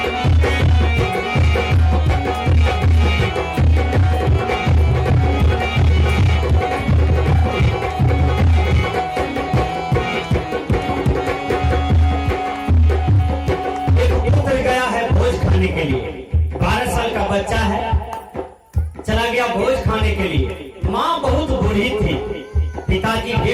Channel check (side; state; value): both; identical; correlation 1.00